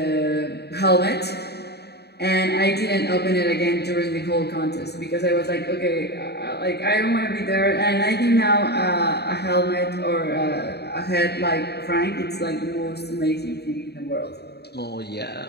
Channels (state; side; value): late; right; 0.48 ms